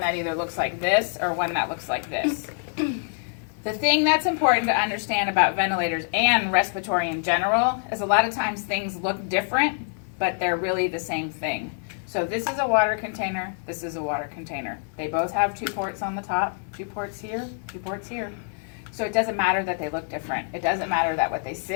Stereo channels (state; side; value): silent; right; 59 dB below the other